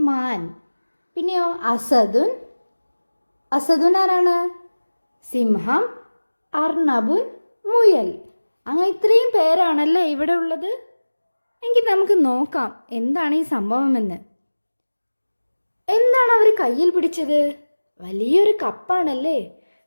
മാൻ. പിന്നെയോ അസദുൻ. അസദുൻ ആരാണ്? സിംഹം. അർണബുൻ, മുയൽ. അങ്ങനെ ഇത്രയും പേരാണല്ലേ ഇവിടെ ഉള്ളത്. എങ്കിൽ നമുക്ക് നോക്കാം എന്താണ് ഈ സംഭവമെന്ന്. എന്താണ് അവർ കയ്യിൽ പിടിച്ചത്? വലിയൊരു കപ്പാണല്ലേ.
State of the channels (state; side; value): inverted; both; correlation -1.00